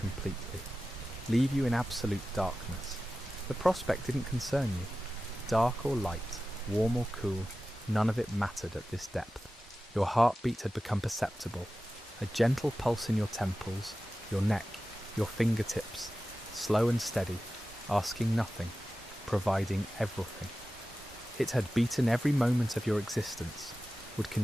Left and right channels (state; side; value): normal; both; correlation 0.94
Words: leave you in absolute darkness. The prospect didn't concern you. Dark or light, warm or cool, none of it mattered at this depth. Your heartbeat had become perceptible, a gentle pulse in your temples, your neck, your fingertips, slow and steady, asking nothing, providing everything. It had beaten every moment of your existence, would